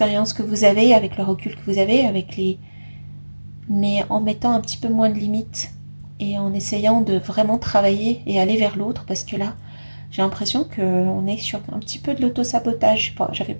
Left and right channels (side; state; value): both; inverted; correlation -1.00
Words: que vous avez, avec le recul que vous avez, avec les... mais en mettant un petit peu moins de limites et en essayant de vraiment travailler et aller vers l'autre parce que là, j'ai l'impression qu'on est sur un petit peu de l'autosabotage. J'avais